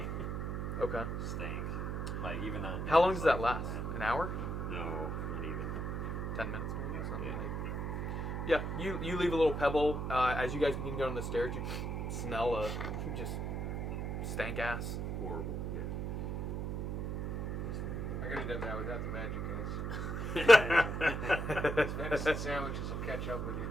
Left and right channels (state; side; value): noise; right; hum, 2 dB below the sound